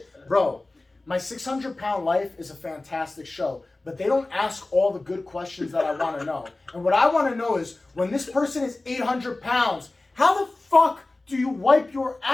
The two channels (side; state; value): right; quieter; 3.0 dB